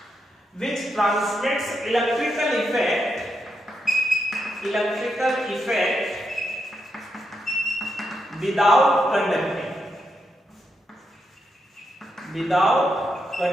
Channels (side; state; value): both; normal; correlation 0.82